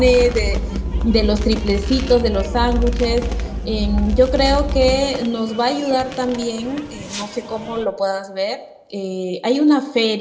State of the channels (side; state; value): both; identical; correlation 1.00